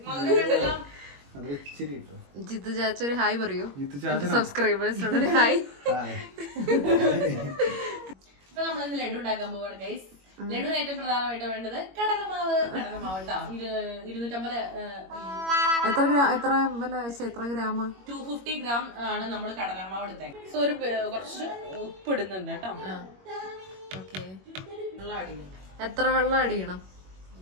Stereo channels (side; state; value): left; late; 21 ms